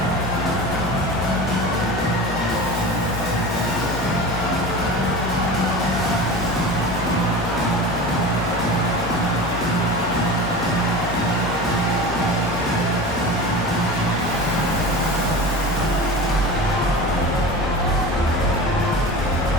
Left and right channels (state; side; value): normal; both; correlation 0.32